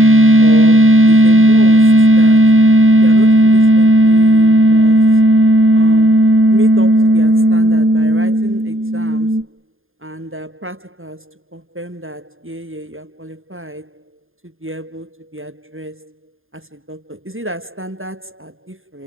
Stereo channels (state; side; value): late; left; 0.59 ms